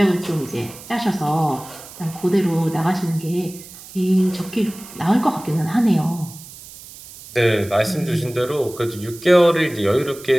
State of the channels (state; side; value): noise; right; hiss, 17 dB below the sound